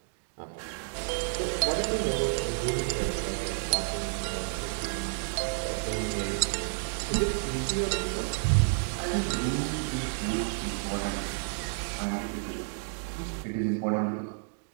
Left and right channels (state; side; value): silent; left; digital silence